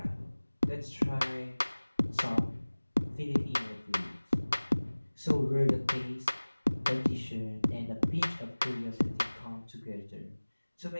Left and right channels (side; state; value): both; inverted; correlation -1.00